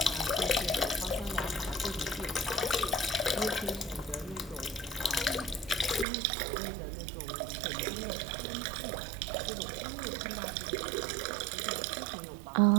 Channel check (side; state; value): left; drops out; at 6.1 s